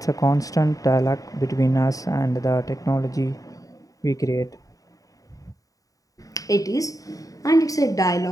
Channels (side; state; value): right; late; 0.17 ms